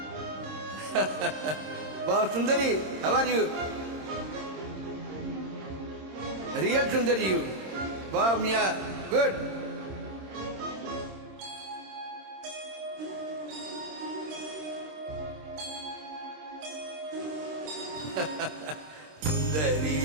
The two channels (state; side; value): late; left; 26 ms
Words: Wow, Sundari, how are you? Real Sundari you. Wow, Mia, good. சுந்தரி